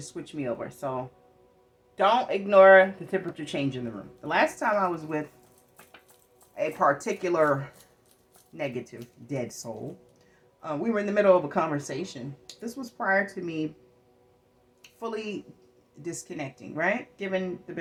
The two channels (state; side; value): identical; both; correlation 1.00